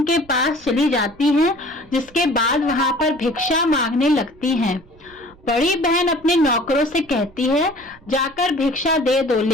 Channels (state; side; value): noise; right; rumble, 26 dB below the sound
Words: के पास चली जाती हैं, जिसके बाद वहां पर भिक्षा मांगने लगती हैं। बड़ी बहन अपने नौकरों से कहती है, जाकर भिक्षा दे दो,